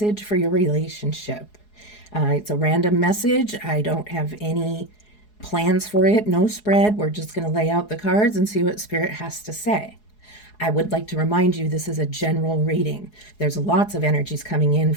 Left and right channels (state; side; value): late; right; 4.7 ms